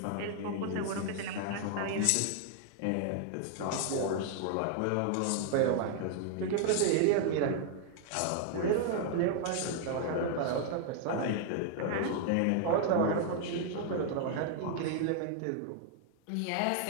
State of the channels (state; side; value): different; both; correlation 0.00